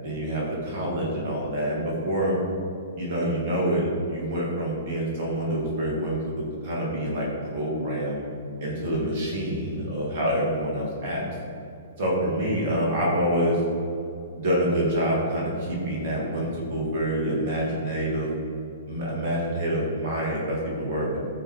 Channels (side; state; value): both; inverted; correlation -0.35